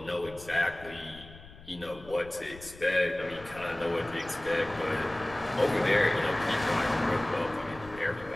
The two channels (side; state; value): left; noise; rumble, 18 dB below the sound